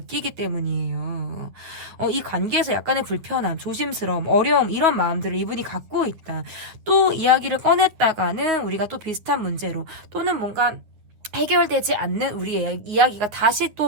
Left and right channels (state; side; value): late; left; 9.8 ms